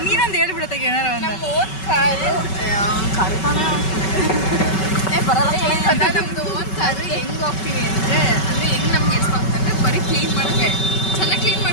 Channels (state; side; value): late; right; 5.3 ms